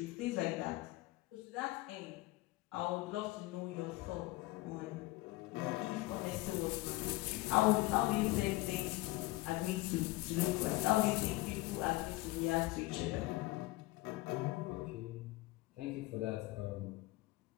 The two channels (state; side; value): quieter; right; 20.0 dB